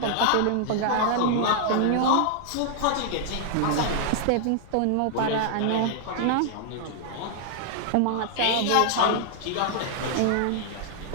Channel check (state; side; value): different; both; correlation -0.01